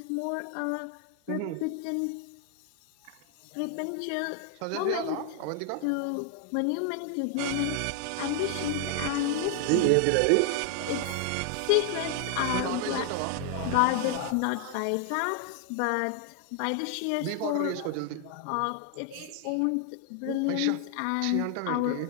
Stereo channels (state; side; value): different; both; correlation 0.00